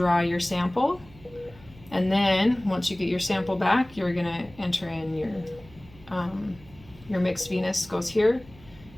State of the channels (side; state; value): right; noise; hum, 23 dB below the sound